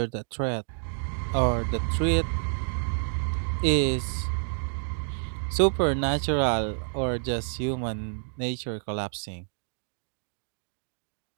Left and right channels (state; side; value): silent; left; digital silence